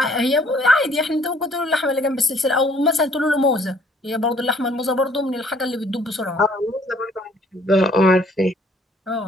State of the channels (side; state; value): both; normal; correlation 0.61